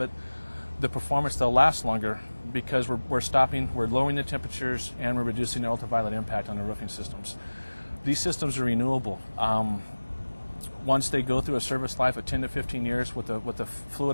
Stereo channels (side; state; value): both; inverted; correlation -1.00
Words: it. The performance, they'll last longer because we're lowering the temperatures and we're reducing the ultraviolet impact on the roofing systems. These systems are renewable. Once they go through a service life of 10 to 15 years with the fluid